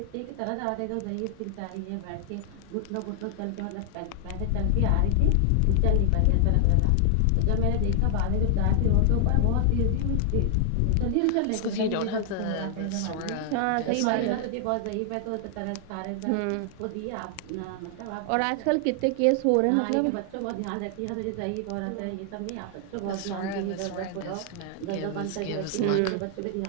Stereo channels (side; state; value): both; different; correlation 0.00